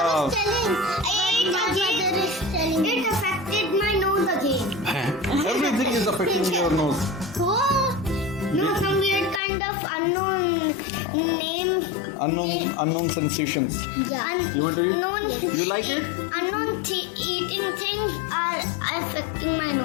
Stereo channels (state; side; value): drops out; right; at 9.4 s